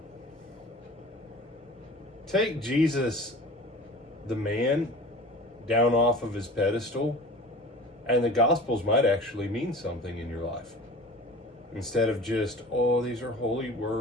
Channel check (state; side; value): normal; both; correlation 0.39